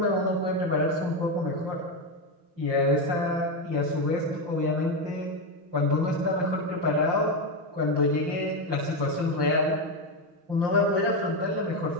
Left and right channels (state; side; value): late; left; 5.7 ms